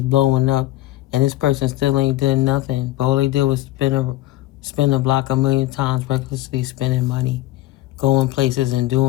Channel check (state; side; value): quieter; right; 15.9 dB